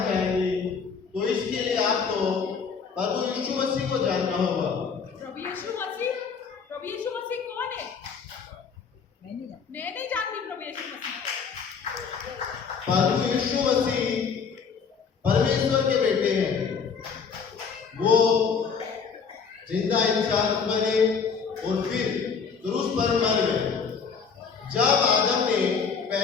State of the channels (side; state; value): right; quieter; 5.9 dB